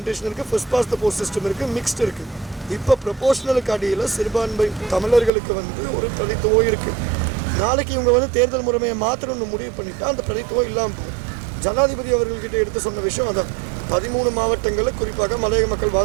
இருக்குது, first past the post system இருக்குது, மிக்ஸ்டு இருக்குது. இப்போ ப்ரொபோஷனலுக்கு அடியில் சிறுபான்மை தமிழர்களுக்கு ஒரு பிரதித்துவம் இருக்குது. நாளைக்கு இவங்க தேர்தல் முறைமையை மாற்றணும்னு முடிவு பண்ணிட்டா அந்த பிரதித்துவம் இல்லாமல் போகும். ஜனாதிபதி அவர்கள்கிட்ட எடுத்து சொன்ன விஷயம் அதான். 13 மாவட்டங்களில் குறிப்பாக மலையக மக்கள்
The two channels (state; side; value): drops out; left; at 5.3 s